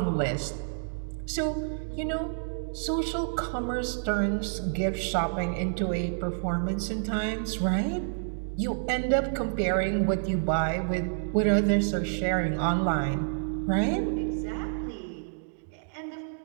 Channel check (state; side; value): silent; left; digital silence